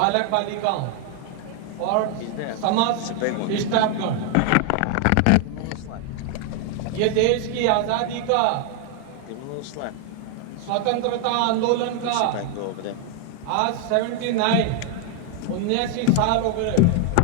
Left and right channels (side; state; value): both; different; correlation 0.00